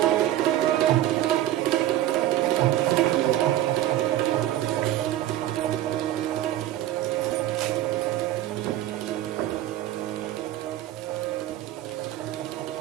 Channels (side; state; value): left; quieter; 13.4 dB